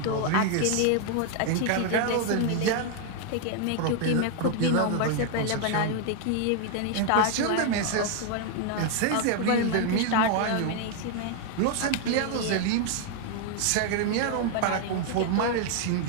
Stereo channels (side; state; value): both; different; correlation 0.00